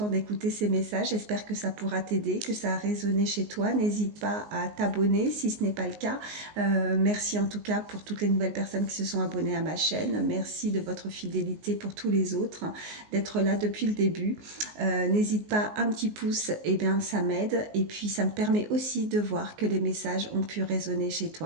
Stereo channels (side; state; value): left; late; 19 ms